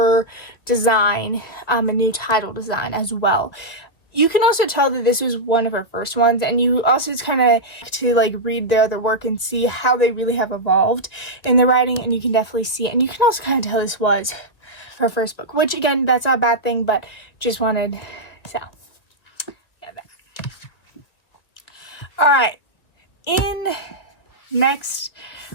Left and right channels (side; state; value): right; late; 1.7 ms